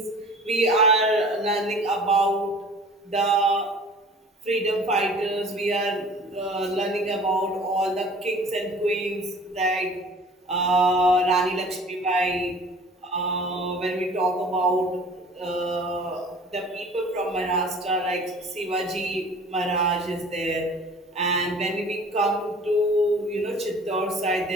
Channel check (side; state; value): both; normal; correlation 0.46